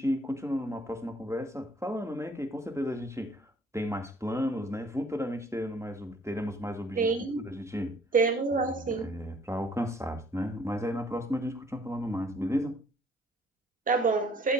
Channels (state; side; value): normal; both; correlation 0.58